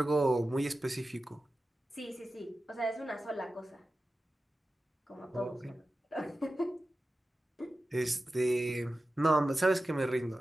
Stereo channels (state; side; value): normal; both; correlation 0.94